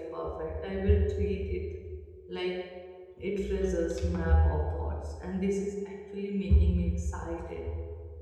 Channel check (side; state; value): both; identical; correlation 1.00